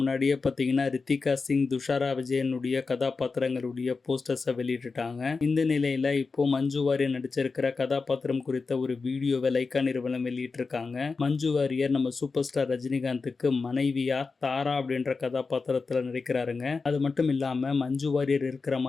பாத்தீங்கன்னா ரித்திகா சிங், துஷாரா விஜயனுடைய கதாபாத்திரங்களுடைய போஸ்டர்ஸை வெளியிட்டுட்டாங்க. இந்த நிலையில இப்போ மஞ்சு வாரியர் நடிச்சிருக்கிற கதாபாத்திரம் குறித்த ஒரு வீடியோவை லைக்கா நிறுவனம் வெளியிட்டிருக்காங்க. மஞ்சு வாரியர் நம்ம சூப்பர் ஸ்டார் ரஜினிகாந்துக்கு மனைவியா தாரா அப்படின்ற கதாபாத்திரத்துல நடிக்கிறாருங்க. அது மட்டும் இல்லாம மஞ்சு வாரியர் இருக்கிற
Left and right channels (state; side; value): quieter; right; 4.4 dB